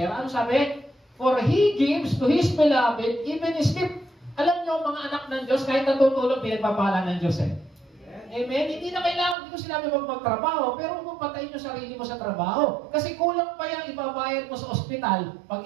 Ano sabi? For He gives to His beloved, even His gift. Alam niyo, mga anak ng Diyos, kahit natutulog, pinagpapala ng Diyos Amen? Hindi na kailangan, hindi ko sinabi magtrabaho, pero huwag patayin yung sarili mo sa trabaho. Kasi kulang pa yung ibabayad mo sa ospital pag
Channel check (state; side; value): drops out; left; at 9.3 s